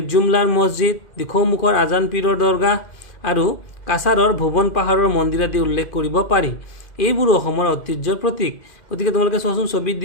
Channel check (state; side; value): late; right; 2.4 ms